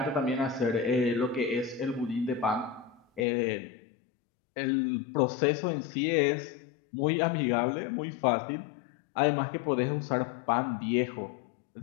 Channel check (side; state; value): right; drops out; at 3.2 s